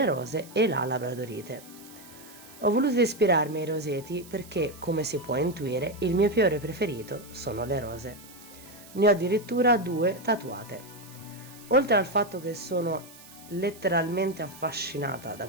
rose e la labradorite. Ho voluto ispirarmi ai roseti perché, come si può intuire, il mio fiore preferito sono le rose. Ne ho addirittura 2 tatuate. Oltre al fatto che sono letteralmente affascinata da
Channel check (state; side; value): noise; right; hiss, 20 dB below the sound